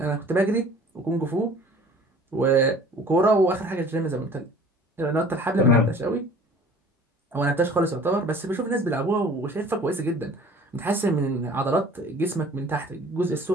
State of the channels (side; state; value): both; normal; correlation 0.48